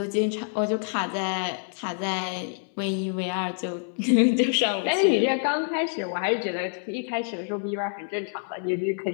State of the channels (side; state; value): right; silent; 60 dB below the other